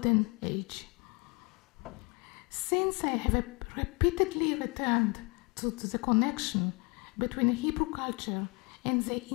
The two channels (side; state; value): right; quieter; 29.2 dB